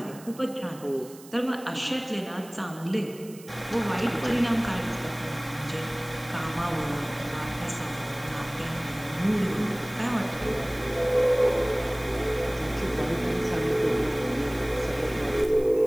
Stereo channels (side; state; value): right; noise; hiss, 20 dB below the sound